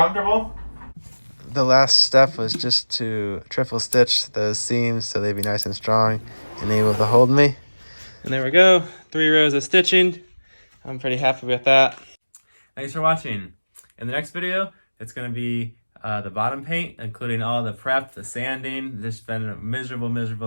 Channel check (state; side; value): inverted; both; correlation -1.00